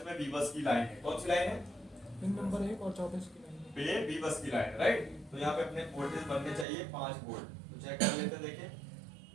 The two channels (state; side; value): drops out; left; at 6.7 s